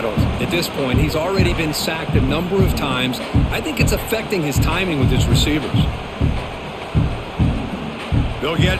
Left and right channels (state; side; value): identical; both; correlation 1.00